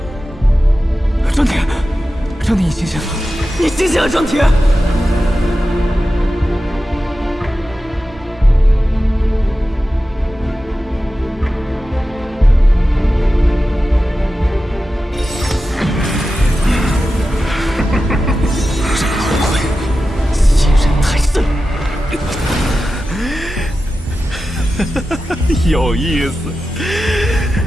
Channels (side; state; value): both; normal; correlation 0.93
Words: 张铁，张铁，你醒醒了！你醒醒了，张铁！这老鬼欺人太甚！有意思